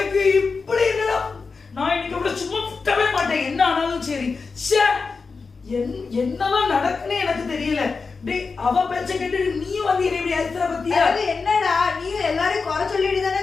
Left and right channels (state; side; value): quieter; right; 4.6 dB